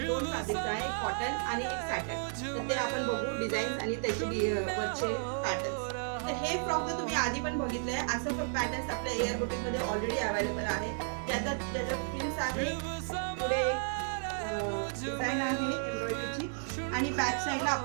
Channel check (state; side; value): silent; left; 56 dB below the other